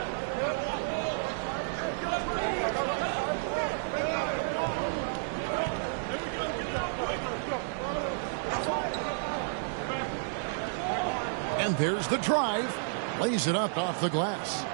And there's the drive. Lays it up off the glass.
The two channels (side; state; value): left; silent; digital silence